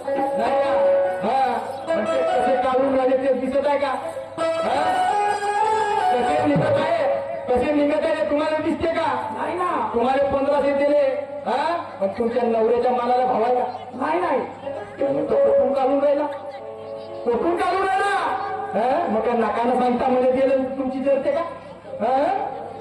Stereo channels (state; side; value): identical; both; correlation 1.00